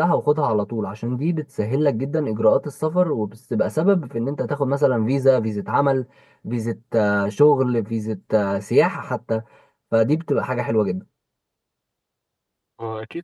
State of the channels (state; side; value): identical; both; correlation 1.00